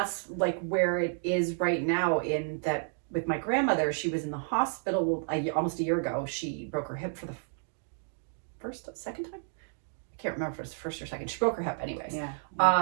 like where it is right now, in that with my grandmother, she was in the hospital almost a year ago. She broke her hip for the second time. I can't remember if it was the first or second. She broke her hip anyways.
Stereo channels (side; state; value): left; silent; digital silence